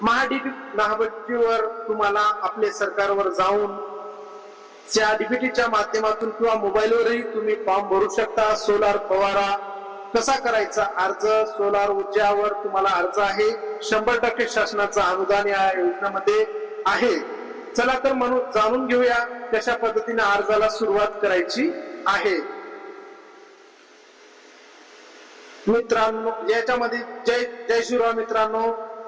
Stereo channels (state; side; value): identical; both; correlation 1.00